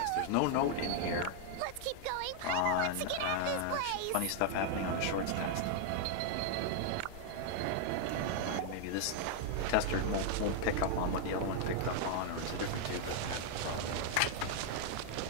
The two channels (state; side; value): different; both; correlation 0.00